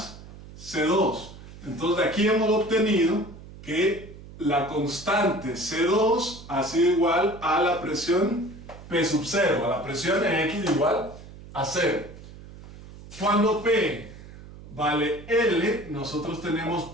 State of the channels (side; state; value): right; noise; hum, 17 dB below the sound